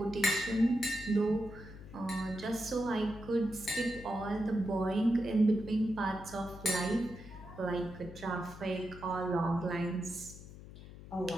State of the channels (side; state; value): left; noise; hum, 15 dB below the sound